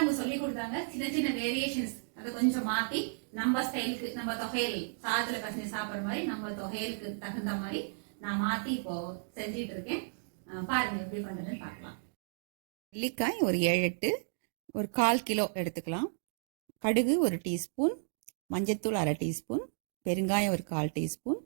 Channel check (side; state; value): left; silent; digital silence